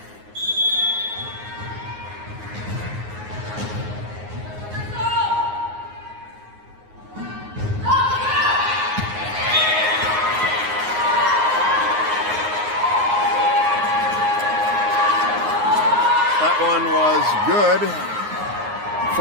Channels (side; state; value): left; late; 9.5 ms